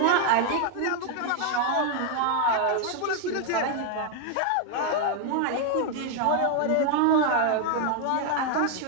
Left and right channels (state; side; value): different; both; correlation 0.00